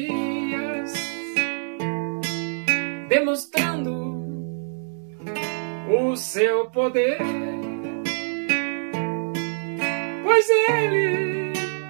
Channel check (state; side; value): silent; left; digital silence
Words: demonstrando o seu poder, pois ele